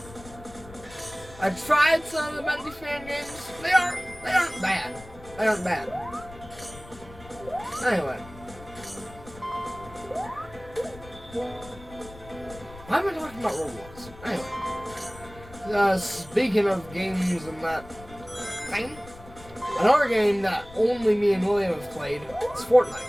I tried some of the Bendy fan games. They aren't bad. They aren't bad. Anyway. Why am I talking about Roblox? Anyway. Speaking of games and that thing, another game that only me and William have played is Fortnite.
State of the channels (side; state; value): left; noise; rumble, 18 dB below the sound